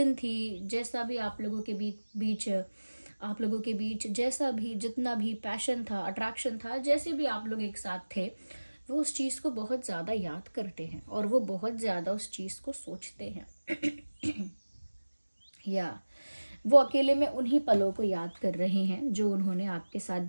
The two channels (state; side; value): inverted; both; correlation -1.00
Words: थी, जैसा भी आप लोगों के बीच जैसा भी जितना भी पैशन था, अट्रैक्शन था, जैसे भी आप लोग एक साथ थे, वो उस चीज़ को बहुत ज़्यादा याद करते हैं और वो बहुत ज़्यादा उस चीज़ को सोचते हैं। या वो अकेले में उन्हीं पलों को याद कर रहे हैं जो उन्होंने आपके साथ